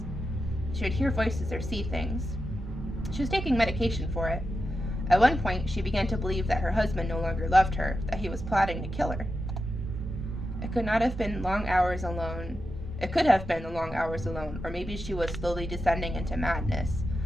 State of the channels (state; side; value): normal; both; correlation 0.89